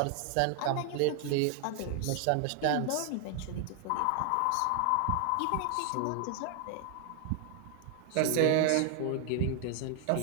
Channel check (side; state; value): both; different; correlation 0.00